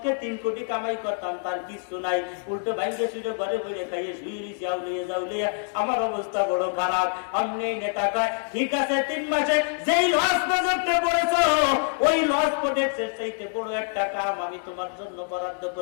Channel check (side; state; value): right; silent; digital silence